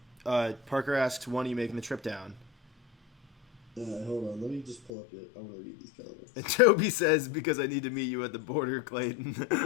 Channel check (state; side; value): drops out; right; at 4.9 s